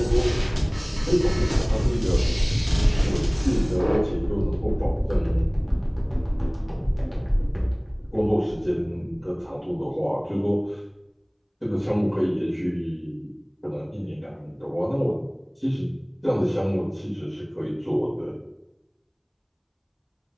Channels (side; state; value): both; identical; correlation 1.00